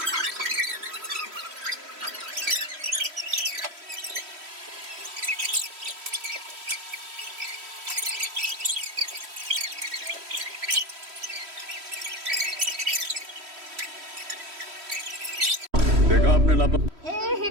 देखा आपने लापा हे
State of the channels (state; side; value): late; left; 3.1 ms